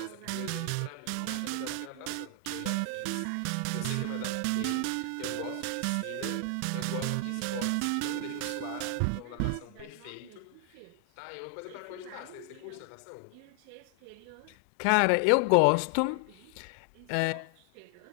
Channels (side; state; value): both; different; correlation 0.00